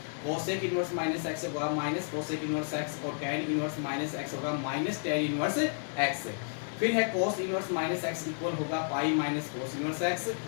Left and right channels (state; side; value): silent; right; digital silence